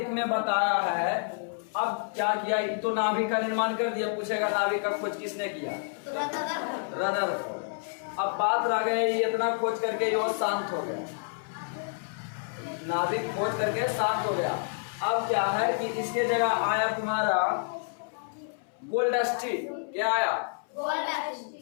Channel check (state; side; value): silent; right; 59 dB below the other